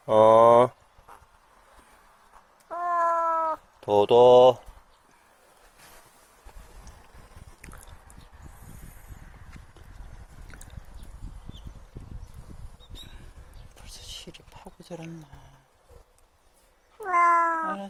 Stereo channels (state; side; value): identical; both; correlation 1.00